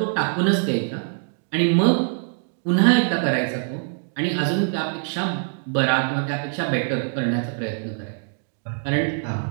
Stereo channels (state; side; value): silent; left; digital silence